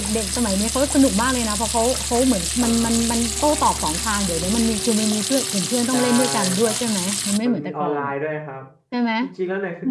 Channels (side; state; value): both; identical; correlation 1.00